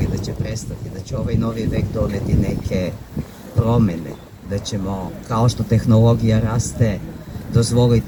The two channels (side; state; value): both; identical; correlation 1.00